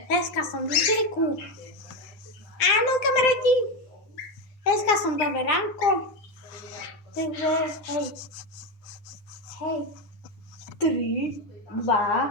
dneska som v cirku. Áno, kamaráti, dneska som dobre ránko. Takže, hej. 3, 2,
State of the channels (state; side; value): late; right; 9.7 ms